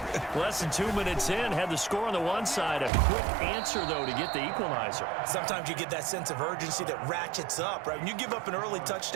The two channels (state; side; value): drops out; left; at 2.9 s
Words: Less than 2 minutes in, had the score on the one side. A quick answer, though, to get the equalizer. Sometimes you get that sense of urgency that ratchets up, right? When you give up an early